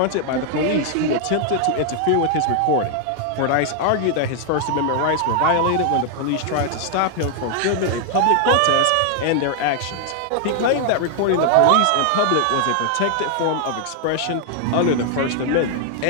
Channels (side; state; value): both; different; correlation 0.00